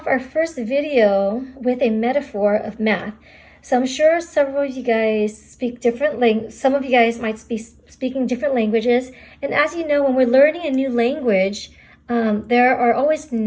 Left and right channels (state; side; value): identical; both; correlation 1.00